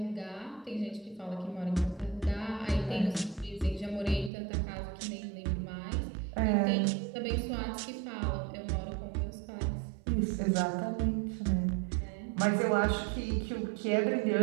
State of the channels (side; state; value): left; drops out; at 4.3 s